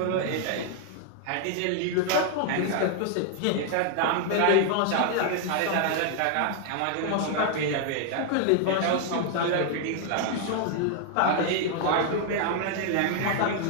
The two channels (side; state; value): both; different; correlation 0.00